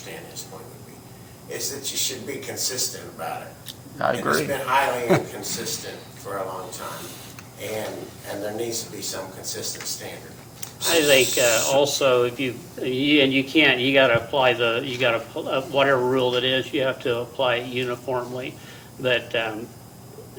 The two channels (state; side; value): identical; both; correlation 1.00